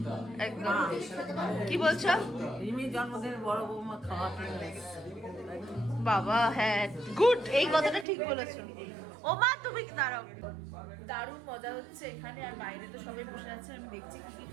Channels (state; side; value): drops out; left; at 8.1 s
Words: হবে একদম কি বলছো রিমির জন্মদিনের বড় বৌমা খাওয়াতে এসেছে। বাবা হ্যাঁ গুড এই কথাটা ঠিক বলেছো ও মা তুমি দাঁড়াও দারুণ মজা হচ্ছে এখানে আর বাইরে তো সবাই বসে আছে আমি দেখছি কি কি